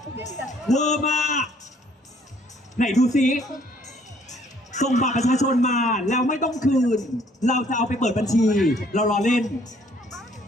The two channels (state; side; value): normal; both; correlation 0.62